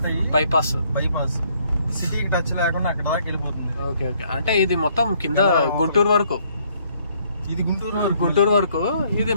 అయ్యి బైపాస్ సిటీకి టచ్ లేకుండా అక్కడ దాకా వెళ్ళిపోతుంది. ఓకే, అంటే ఇది మొత్తం కింద గుంటూరు వరకు. ఇది గుంటూరు వరకు. ఇది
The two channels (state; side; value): inverted; both; correlation -0.66